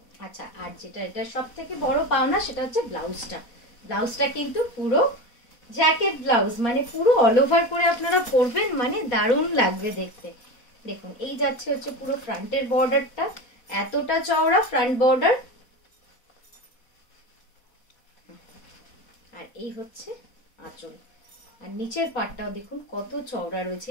আচ্ছা, আর যেটা এটা সব থেকে বড় পাওনা, সেটা হচ্ছে ব্লাউজটা। ব্লাউজটা কিন্তু পুরো জ্যাকেট ব্লাউজ, মানে পুরো অল ওভার করে আপনারা পরবেন, মানে দারুণ লাগবে দেখতে। দেখুন, এই যাচ্ছে হচ্ছে পুরো ফ্রন্টের বর্ডারটা, এতটা চওড়া ফ্রন্ট বর্ডার। আর এই হচ্ছে আঁচল, আর নিচের পাটটাও দেখুন কত চওড়া রয়েছে।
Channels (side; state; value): right; late; 4.1 ms